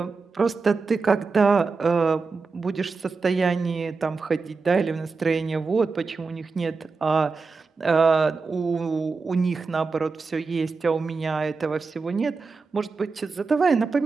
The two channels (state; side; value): quieter; left; 4.4 dB